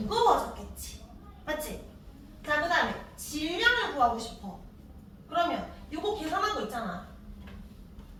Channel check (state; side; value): identical; both; correlation 1.00